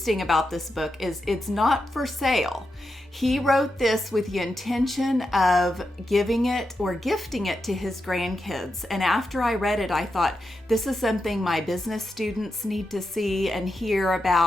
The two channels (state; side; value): normal; both; correlation 0.87